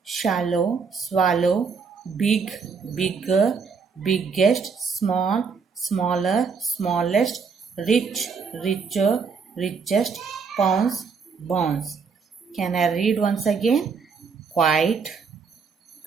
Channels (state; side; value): quieter; left; 5.5 dB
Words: shallow, swallow, big, bigger, biggest, small, smaller, smallest, rich, richer, richest, pounds, bounce. Can I read once again? Quite,